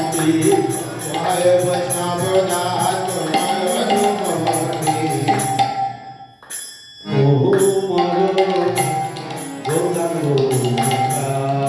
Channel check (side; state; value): both; identical; correlation 1.00